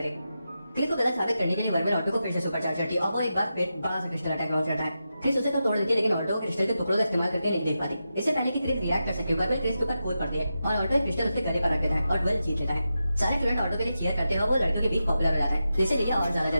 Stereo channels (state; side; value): inverted; both; correlation -0.89